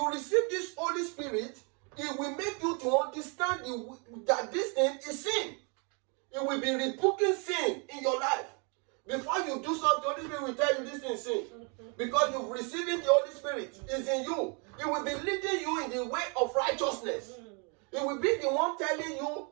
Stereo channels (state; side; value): quieter; left; 35.1 dB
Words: receive this Holy Spirit, it will make you to understand that this thing is sin. It will be rebuking sin in your life. Before you do something, the Holy Spirit will tell you this thing is sin. Because you've received the Holy Spirit. It's in you. It will be leading you in the way of righteousness. It will be the one telling you